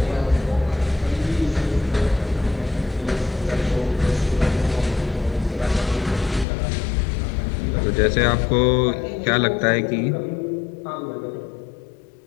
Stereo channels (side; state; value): right; drops out; at 6.5 s